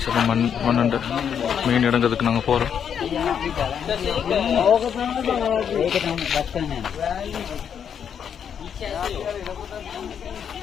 மண்ணண்டு மீன் இடங்கிறதுக்கு நாங்கள் போகிறோம்.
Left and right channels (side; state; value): right; quieter; 8.0 dB